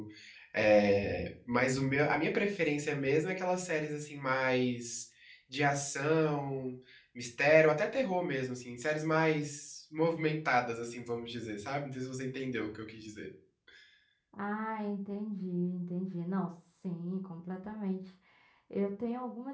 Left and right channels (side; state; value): both; identical; correlation 1.00